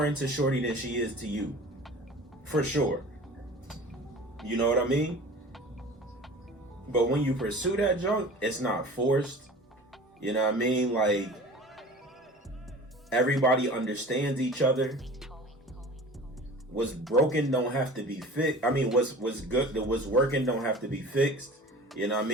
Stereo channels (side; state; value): both; normal; correlation 0.40